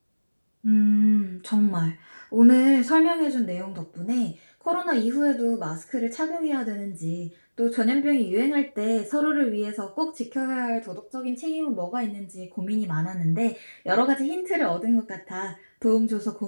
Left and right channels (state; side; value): inverted; both; correlation -1.00